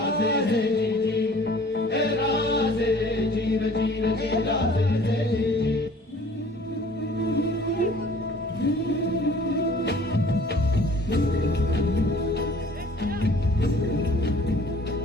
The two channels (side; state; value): both; normal; correlation 0.51